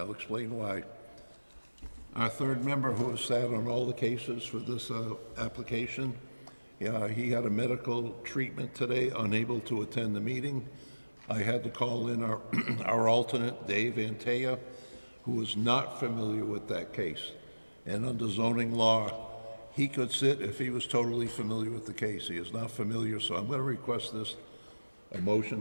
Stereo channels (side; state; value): both; inverted; correlation -1.00